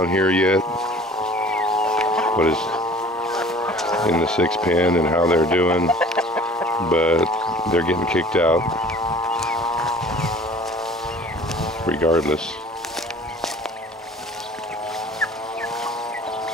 here yet. What is in the 6 pen and how they're doing, but they're getting kicked out regardless.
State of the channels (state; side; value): normal; both; correlation 0.47